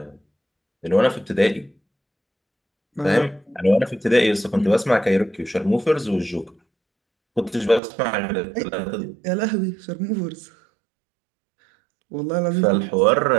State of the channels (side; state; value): left; drops out; at 7.8 s